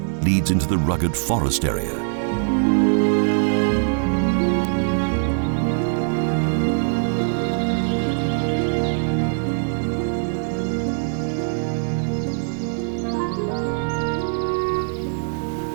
leads into the rugged forest area.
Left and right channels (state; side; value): silent; left; 57 dB below the other